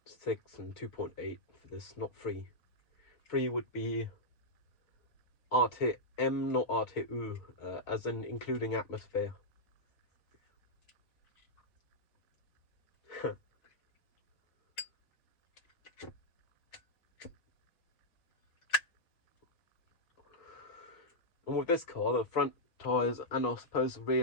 and 2.8 for this, not 3. 3 would be RTM, not RTU, as in including atmosphere. And with this car, the front tyres, and I suppose the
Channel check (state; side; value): late; right; 5.0 ms